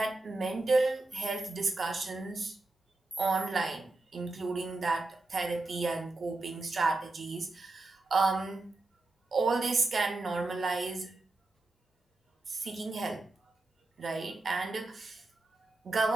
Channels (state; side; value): quieter; left; 3.1 dB